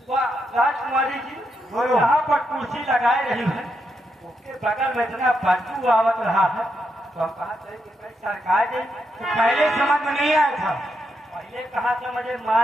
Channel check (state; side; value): normal; both; correlation 0.82